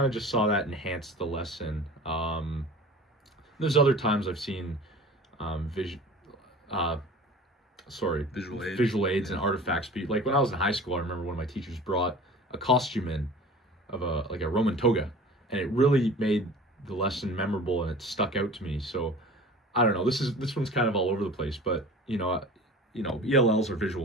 of just saw that enhance the lesson. There's other times I've seen vision visual aids and artifacts be like when I was in high school. I remember one of my teachers brought a costume in of a Roman toga, and it really made the lesson memorable, and it stuck out to me. So I don't know, this one's kind of all over the place, but ELLs are visual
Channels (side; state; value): both; normal; correlation 0.41